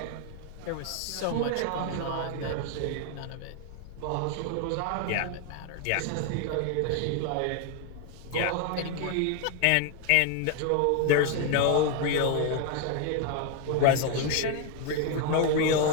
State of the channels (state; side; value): different; both; correlation 0.01